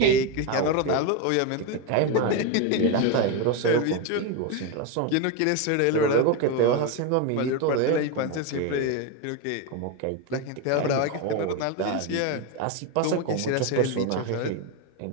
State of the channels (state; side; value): different; both; correlation 0.03